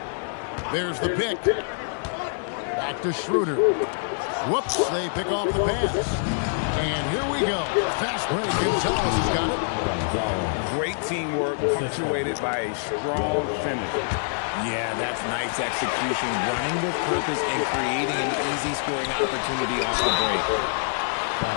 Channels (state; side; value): silent; right; digital silence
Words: There's the pick. Back to Schroeder. Whoops, they pick off the pass. And here we go. Fast break. Gonzalez has got it. Great teamwork punctuated by a strong finish. Yeah, that's nice execution. Running with purpose and creating an easy scoring opportunity off the break.